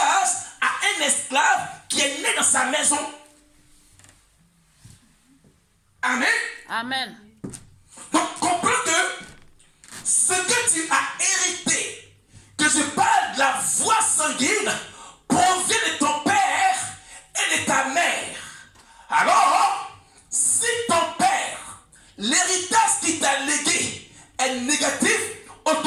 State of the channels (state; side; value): identical; both; correlation 1.00